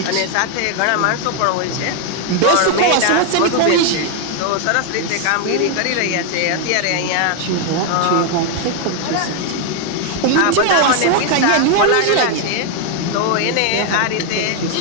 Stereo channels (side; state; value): both; different; correlation 0.00